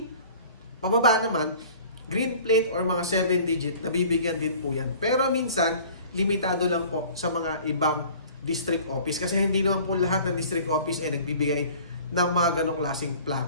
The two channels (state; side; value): inverted; both; correlation -0.47